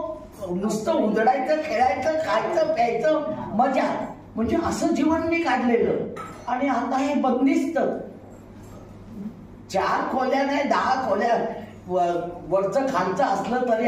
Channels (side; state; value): both; identical; correlation 1.00